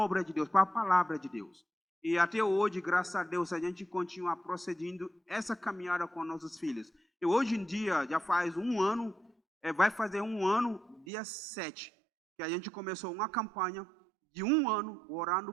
de Deus, para a palavra de Deus. E até hoje, graças a Deus, a gente continua procedendo essa caminhada com nossos filhos. E hoje em dia, já faz um ano, vai fazer um ano, dia 7, que a gente começou uma campanha de um ano orando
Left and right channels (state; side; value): drops out; left; at 11.1 s